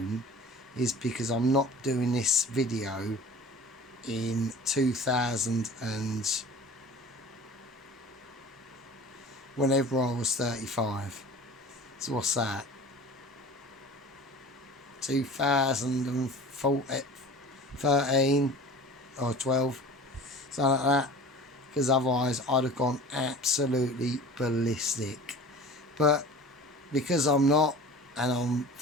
is because I'm not doing this video in 2000 and whenever I was 35. So what's that? 2013 or 12, something like that. Because otherwise I'd have gone absolutely ballistic. But because I'm not, and I'm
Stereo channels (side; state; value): both; normal; correlation 0.40